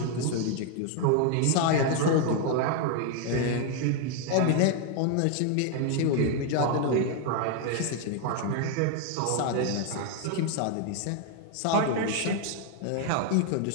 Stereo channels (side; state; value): both; different; correlation 0.01